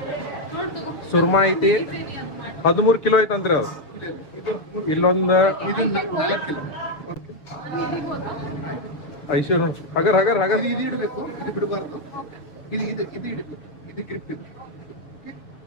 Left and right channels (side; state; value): right; late; 6.8 ms